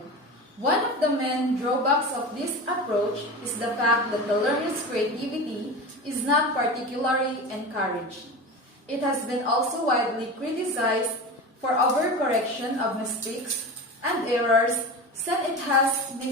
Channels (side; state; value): both; normal; correlation 0.28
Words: One of the main drawbacks of this approach is the fact that the learner's creativity is not particularly encouraged. It has been also widely criticized for overcorrection of mistakes and errors, since it has